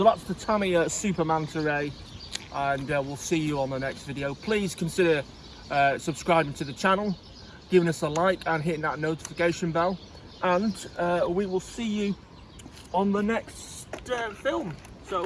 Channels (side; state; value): both; identical; correlation 1.00